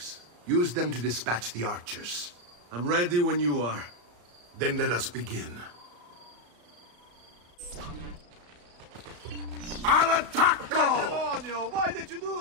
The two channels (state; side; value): late; left; 34 ms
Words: Use them to dispatch the archers. I'm ready when you are. Then let us begin. Al attacco!